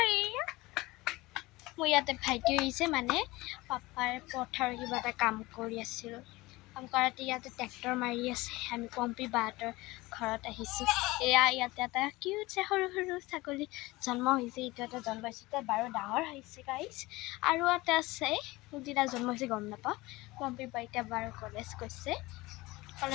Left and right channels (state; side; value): quieter; right; 20.8 dB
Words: মই ইয়াতে ভাইটি হৈছে মানে পাপাৰ পথাৰ কিবা এটা কাম কৰি আছিল কাম কৰাতে ইয়াতে ট্ৰেক্টৰ মাৰি আছে আমি পম্পি বাহঁতৰ ঘৰত আহিছোঁ এয়া ইয়াতে এটা কিউট সৰু সৰু ছাগলী জন্ম হৈছে এইটো এটা জন্ম হৈছে বাৰু ডাঙৰ হৈছে গাইছ আৰু এটা আছে যিটা জন্ম হৈছে গম নাপাওঁ পম্পি বা এতিয়া বাৰু কলেজ গৈছে